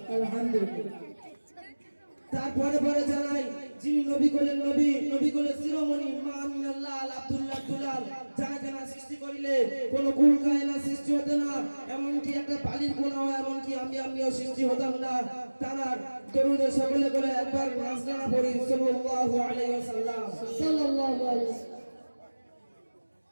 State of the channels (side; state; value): both; inverted; correlation -1.00